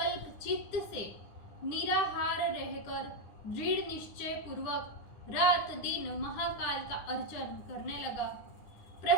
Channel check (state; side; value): late; right; 9.8 ms